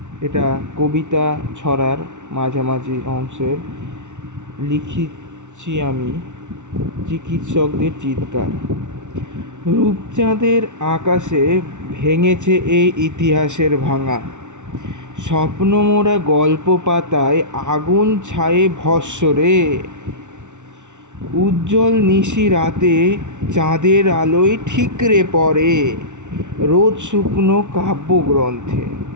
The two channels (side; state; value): left; late; 0.85 ms